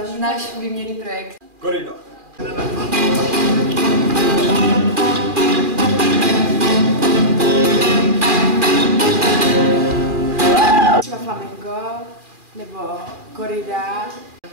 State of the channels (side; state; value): left; late; 2.4 ms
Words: Náš výměnný projekt. Korida. Třeba flamenco nebo korida.